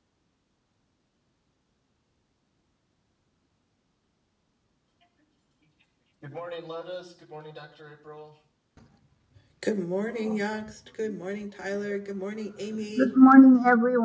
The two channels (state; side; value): identical; both; correlation 1.00